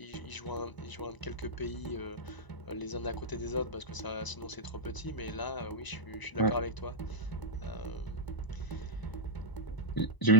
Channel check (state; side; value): late; right; 1.0 ms